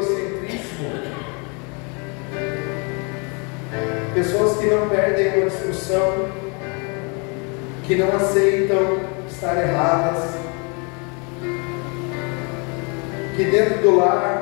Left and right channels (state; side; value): quieter; right; 33.7 dB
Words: pessoas que não perdem a discussão, que não aceitam estar erradas, que dentro do